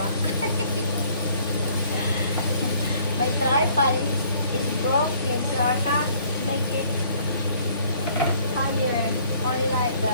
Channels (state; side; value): inverted; both; correlation -0.59